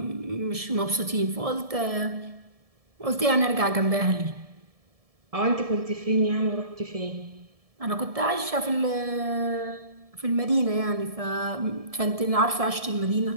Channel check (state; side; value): late; left; 1.7 ms